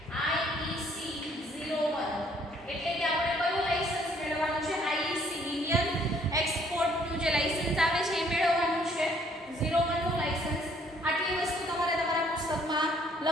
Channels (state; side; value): normal; both; correlation 0.63